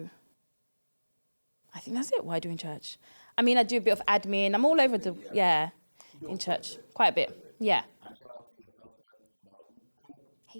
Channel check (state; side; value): inverted; both; correlation -1.00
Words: that's it. What I do in church. I mean, I do a bit of admin. I'm all over yeah. You do quite a bit. Quite a bit. Yeah. And shout out to your husband, Mauko.